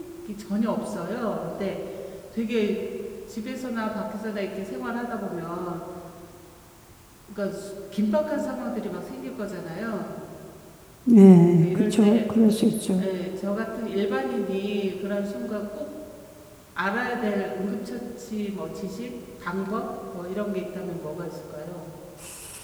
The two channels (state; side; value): identical; both; correlation 1.00